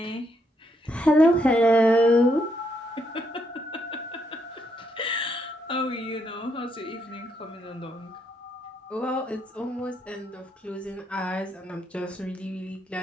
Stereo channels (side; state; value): both; normal; correlation 0.77